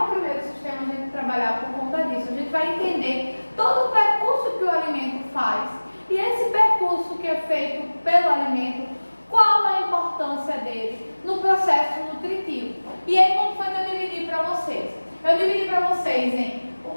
primeiro sistema a gente trabalhar por conta disso. A gente vai entender todo o percurso que o alimento faz. E esse percurso que é feito pelo alimento, qual a importância dele no processo nutritivo. E aí, como foi que eu dividi para vocês? Eu dividi para vocês em o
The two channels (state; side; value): inverted; both; correlation -1.00